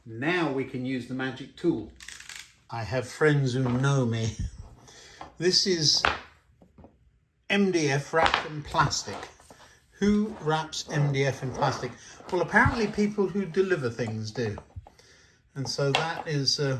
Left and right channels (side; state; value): both; identical; correlation 1.00